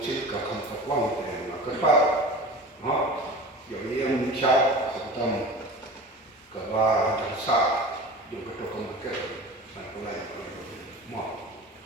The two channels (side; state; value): both; normal; correlation 0.35